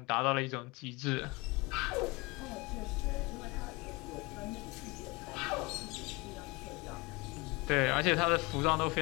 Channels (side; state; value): right; quieter; 25.0 dB